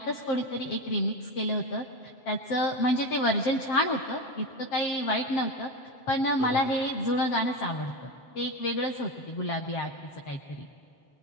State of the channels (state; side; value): late; right; 7.5 ms